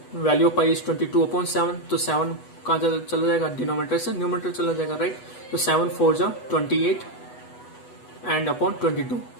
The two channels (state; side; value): late; right; 8.1 ms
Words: value of pi is 22 upon 7। तो 7 कहाँ चला जाएगा, डिनोमिनेटर से न्यूमरेटर चला जाएगा, राइट। तो 7 4 जा 28 and upon 22,